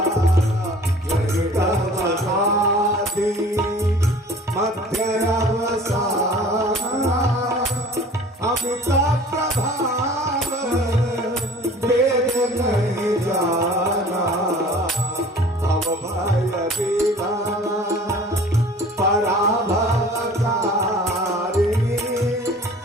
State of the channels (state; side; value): normal; both; correlation 0.47